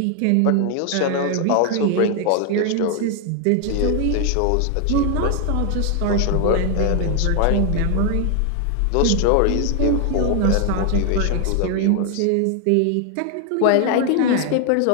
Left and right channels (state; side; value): different; both; correlation 0.00